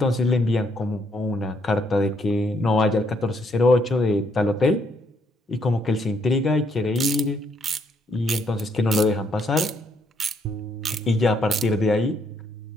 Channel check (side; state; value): both; normal; correlation 0.72